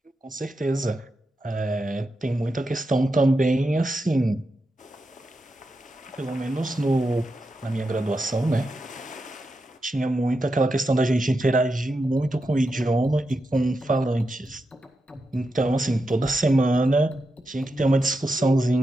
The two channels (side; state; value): both; normal; correlation 0.87